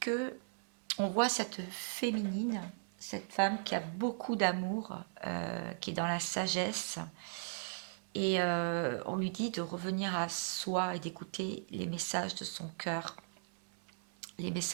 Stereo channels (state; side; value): silent; left; 53 dB below the other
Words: que on voit cette féminine, cette femme qui a beaucoup d'amour, qui est dans la sagesse. Et on lui dit de revenir à soi et d'écouter les messages de son cœur, les